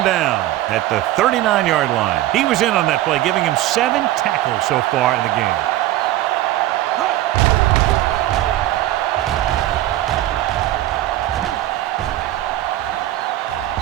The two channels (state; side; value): quieter; left; 14.9 dB